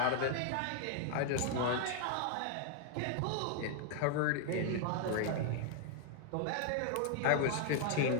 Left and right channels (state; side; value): different; both; correlation 0.00